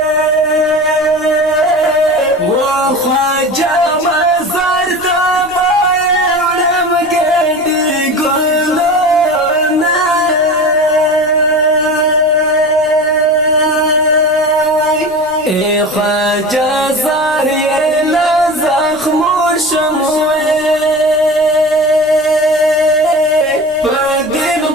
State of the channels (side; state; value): right; noise; rumble, 26 dB below the sound